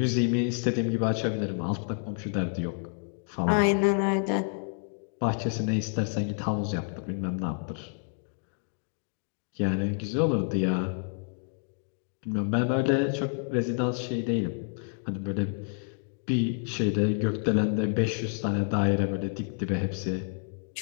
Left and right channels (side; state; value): right; silent; 56 dB below the other